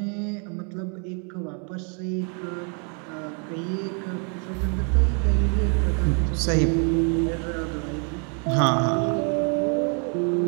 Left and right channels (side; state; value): left; quieter; 39.2 dB